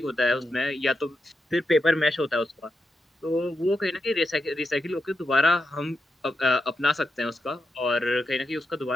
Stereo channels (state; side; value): normal; both; correlation 0.87